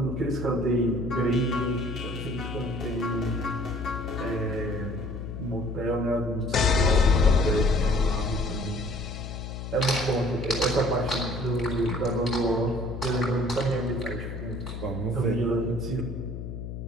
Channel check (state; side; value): noise; left; hum, 8 dB below the sound